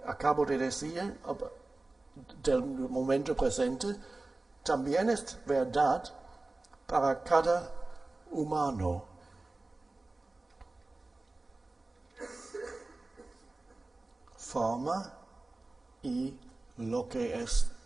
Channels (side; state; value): left; quieter; 3.1 dB